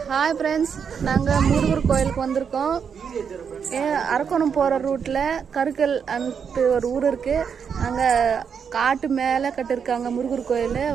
Hi friends, நாங்கள் முருகர் கோயிலுக்கு வந்திருக்கோம். அரக்கோணம் போகிற ரூட்டில் கருக்கல் அன்ட்டு ஒரு ஊர் இருக்குது. அங்கே காட்டு மேலே கட்டிருக்காங்க முருகர் கோயில்.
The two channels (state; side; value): quieter; left; 6.8 dB